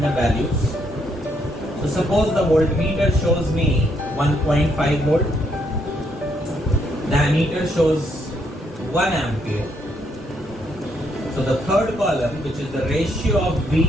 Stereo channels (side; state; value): both; normal; correlation 0.74